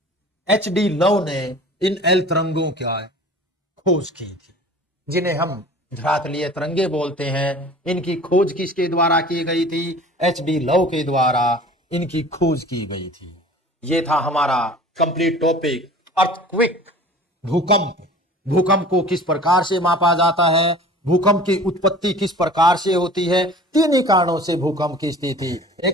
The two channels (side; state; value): both; normal; correlation 0.43